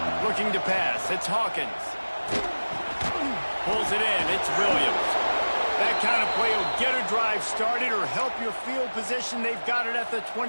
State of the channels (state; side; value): inverted; both; correlation -1.00